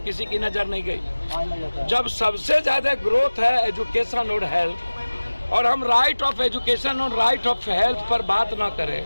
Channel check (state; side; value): inverted; both; correlation -1.00